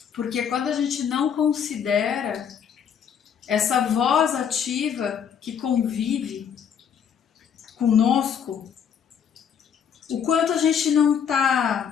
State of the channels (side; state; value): right; quieter; 7.8 dB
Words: porque quando a gente não considera essa voz ativa que convive conosco, o quanto a gente não